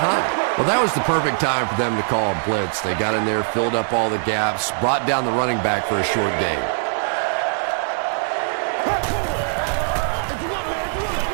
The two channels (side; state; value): left; silent; digital silence